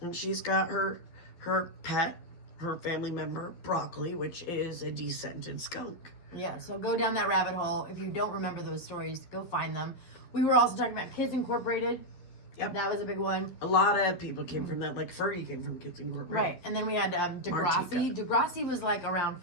she's got her pet, her family member Broccoli, which is a descented skunk. Yeah. So go down that rabbit hole. If you don't remember those stories, go find them. We were also talking about Kids Incorporated. Yep. That was a big one. A lot of people came from that. Like Fergie came from Kids Incorporated. Right. And then we had Degrassi. Degrassi was like around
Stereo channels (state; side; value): late; right; 12 ms